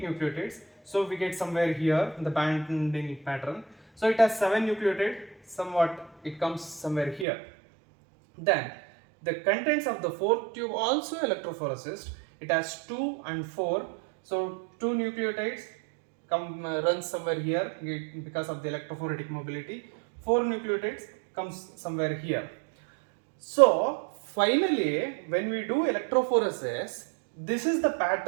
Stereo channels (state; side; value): drops out; left; at 7.2 s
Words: nucleotides. So we get somewhere here the binding pattern. So it has 7 nucleotide, somewhat it comes somewhere here. Then the contents of the fourth tube also electrophoresis. It has 2 and 4. So 2 nucleotides come runs somewhere here because of the electrophoretic mobility. 4 nucleotides comes somewhere here. So finally, when we do electrophoresis, this is the